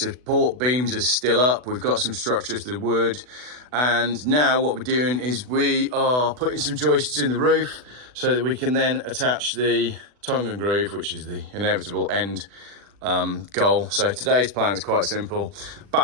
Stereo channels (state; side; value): late; left; 40 ms